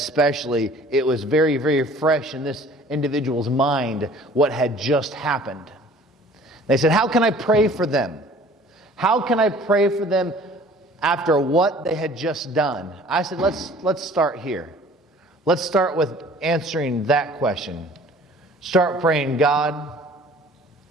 It was very, very fresh in this individual's mind what had just happened. They said, how can I pray for them? How can I pray for them after what they had just done? I said, let's start here. Let's start with answering that question. Start praying, God,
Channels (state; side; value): normal; both; correlation 0.50